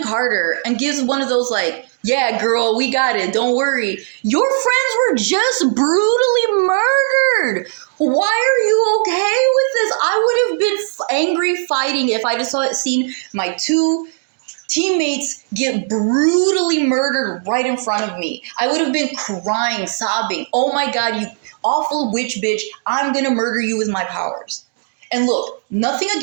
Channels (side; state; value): left; silent; digital silence